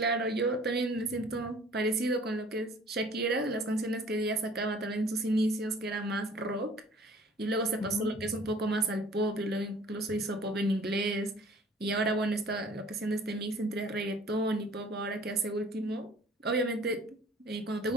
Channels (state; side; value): normal; both; correlation 0.51